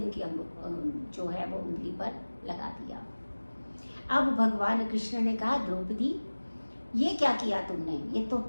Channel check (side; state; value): both; inverted; correlation -1.00